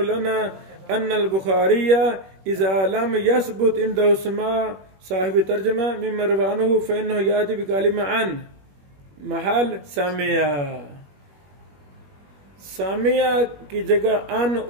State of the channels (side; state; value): left; late; 21 ms